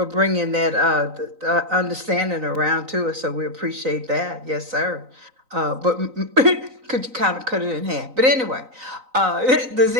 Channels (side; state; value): left; late; 3.9 ms